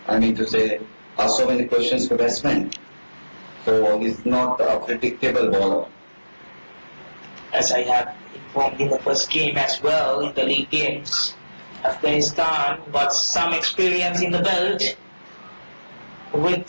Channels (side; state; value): both; inverted; correlation -1.00